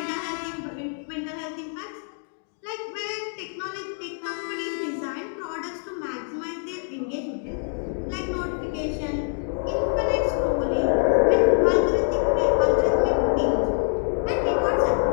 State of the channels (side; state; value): right; silent; digital silence